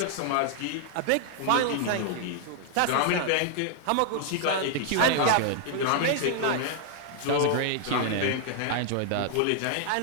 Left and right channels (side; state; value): both; different; correlation 0.00